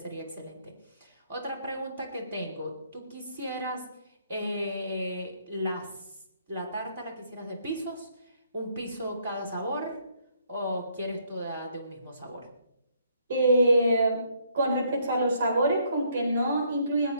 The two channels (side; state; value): both; inverted; correlation -0.68